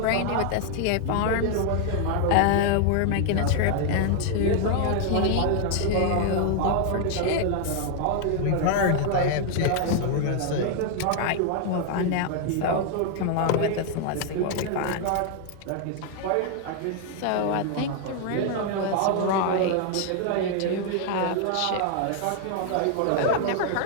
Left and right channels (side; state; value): both; different; correlation 0.00